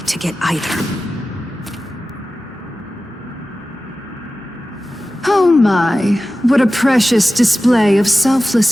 to get either. Oh my, what a precious display of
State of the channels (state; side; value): normal; both; correlation 0.95